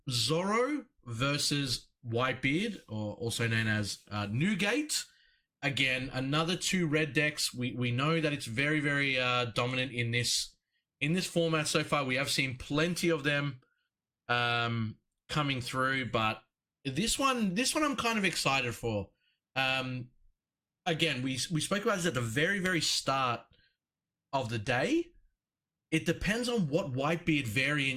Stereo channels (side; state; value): both; identical; correlation 1.00